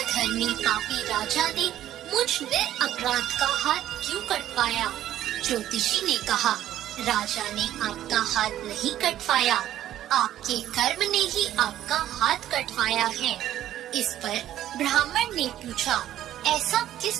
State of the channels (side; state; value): left; quieter; 12.4 dB